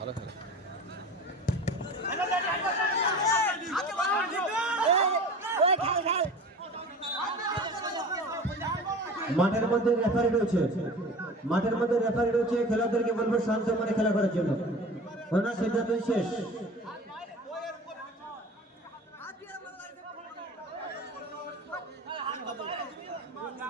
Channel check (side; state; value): both; normal; correlation 0.38